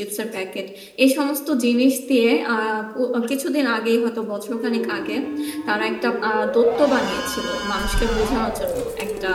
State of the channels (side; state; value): both; identical; correlation 1.00